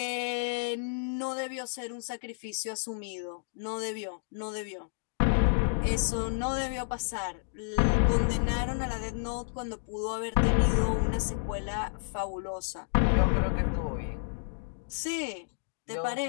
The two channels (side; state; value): right; silent; digital silence